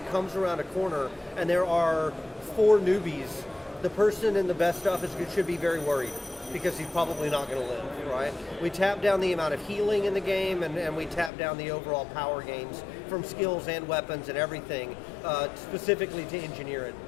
comes around a corner and there are 4 newbies. The person in the best stuff should be very worried because he's probably not going to live, right? We tap down the amount of healing in the game and we tap down the overall power gains from skills and weapons and everything, specifically to engineer it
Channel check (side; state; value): right; drops out; at 11.3 s